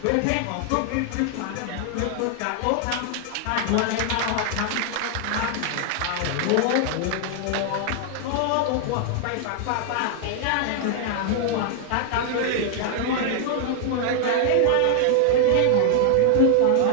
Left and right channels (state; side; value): different; both; correlation -0.01